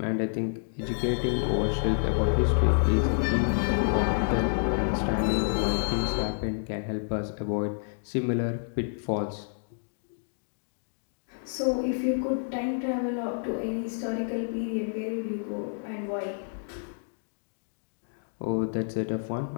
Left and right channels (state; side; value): silent; right; digital silence